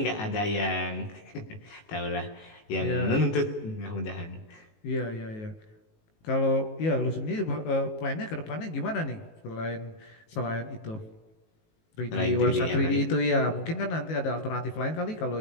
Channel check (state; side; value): late; right; 19 ms